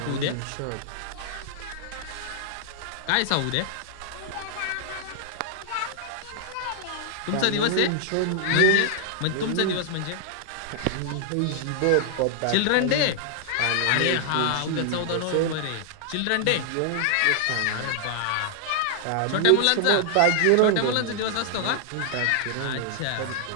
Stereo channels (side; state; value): both; different; correlation -0.01